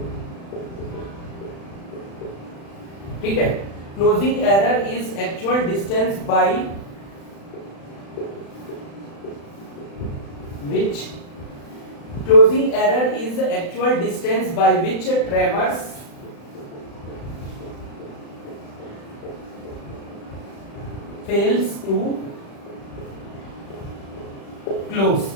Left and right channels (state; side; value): late; right; 35 ms